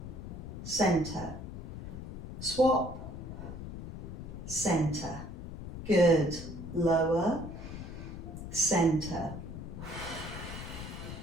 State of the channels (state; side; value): noise; left; rumble, 9 dB below the sound